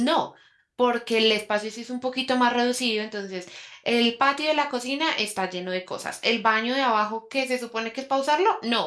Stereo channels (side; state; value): both; identical; correlation 1.00